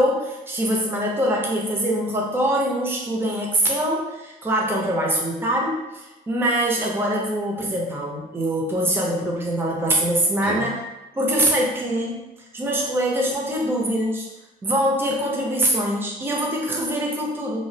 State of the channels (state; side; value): normal; both; correlation 0.46